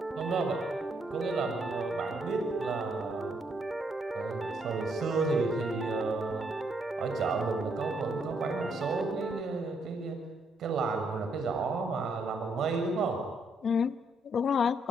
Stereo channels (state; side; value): normal; both; correlation 0.73